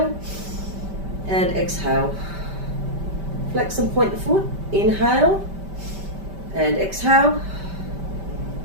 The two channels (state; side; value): late; left; 5.1 ms